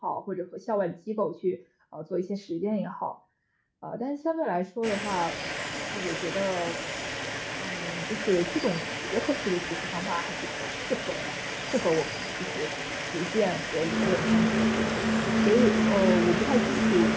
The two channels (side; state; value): both; identical; correlation 1.00